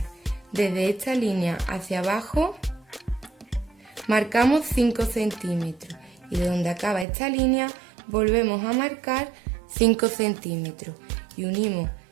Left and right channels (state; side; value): drops out; left; at 7.1 s